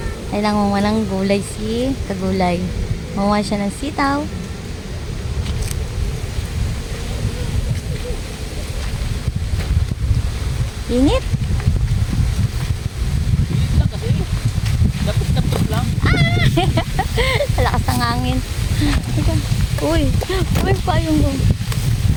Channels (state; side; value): identical; both; correlation 1.00